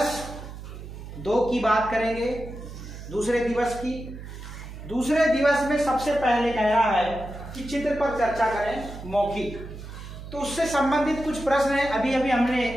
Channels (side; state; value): right; noise; hum, 12 dB below the sound